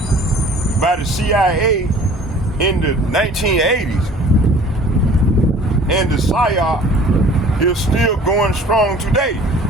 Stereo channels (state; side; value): normal; both; correlation 0.49